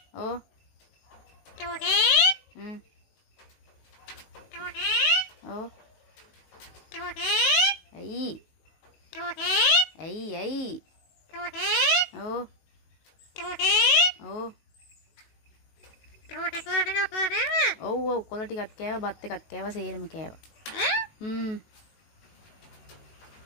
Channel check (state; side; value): late; right; 19 ms